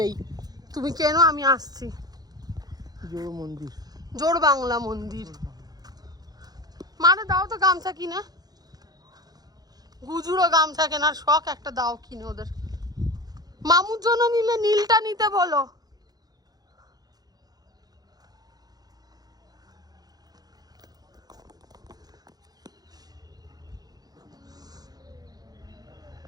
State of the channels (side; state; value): left; late; 0.19 ms